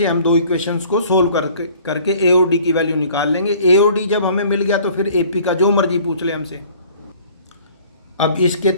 हम दो इक्वेशंस को सोल्व करके ए और डी की वैल्यू निकाल लेंगे। ए और डी जब हमें मिल गया तो फिर ए पी का जो मर्जी पूछ ले हमसे। अब इसके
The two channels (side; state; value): both; inverted; correlation -0.52